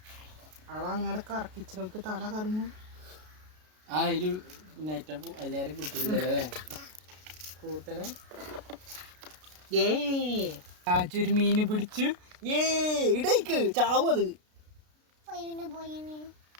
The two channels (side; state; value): left; late; 33 ms